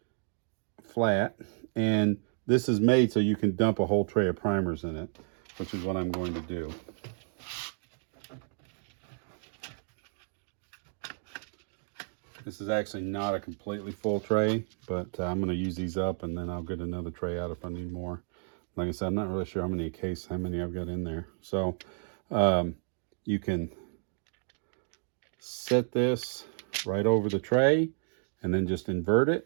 flat. And this is made so you can dump a whole tray of primers in it, which is what I'm going to do. This is actually not a completely full tray, but I'm going to use these up, and then I'll get another tray out if I need more. Like I said, I'm not really sure how many I've got in there. So you can set this right over the tray and then just invert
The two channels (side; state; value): left; silent; 57 dB below the other